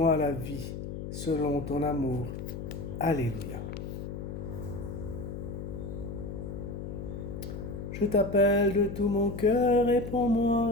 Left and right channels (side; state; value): left; noise; hum, 7 dB below the sound